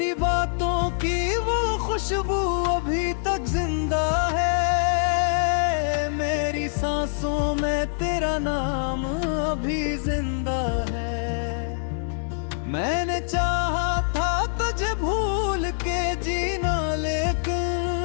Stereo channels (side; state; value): right; silent; digital silence